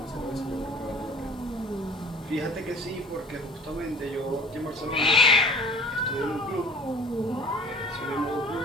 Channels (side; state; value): both; normal; correlation 0.46